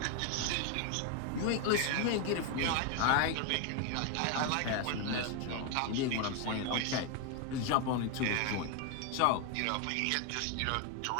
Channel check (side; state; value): both; different; correlation 0.01